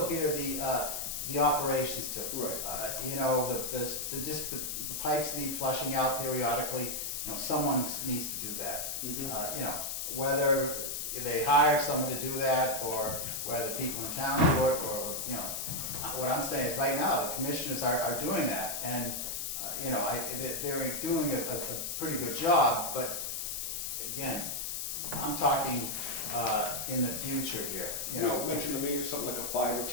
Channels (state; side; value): noise; left; hiss, 3 dB below the sound